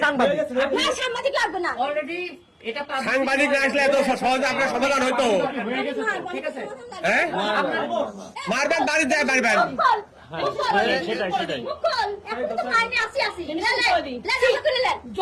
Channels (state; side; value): identical; both; correlation 1.00